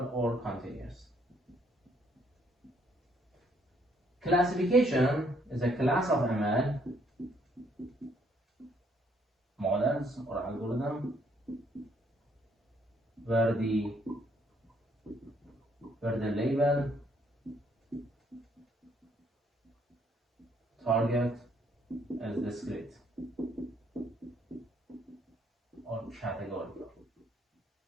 or continuous. Classification is a class of ML models or algorithm where the label, target is discrete or categorical.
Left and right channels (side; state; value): both; normal; correlation 0.68